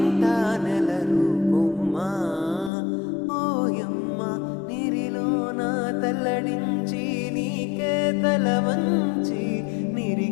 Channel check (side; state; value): right; drops out; at 2.7 s